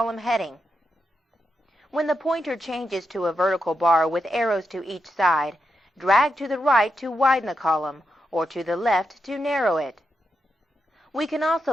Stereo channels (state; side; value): normal; both; correlation 0.85